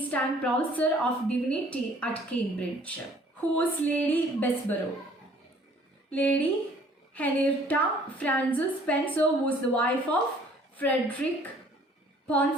and professor of divinity at Cambridge. Who was Lady Bessborough? Lady Henrietta Frances Spencer was the wife of Frederick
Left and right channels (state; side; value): normal; both; correlation 0.56